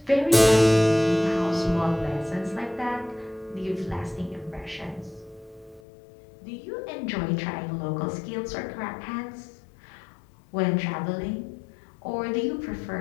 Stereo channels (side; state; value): right; drops out; at 5.8 s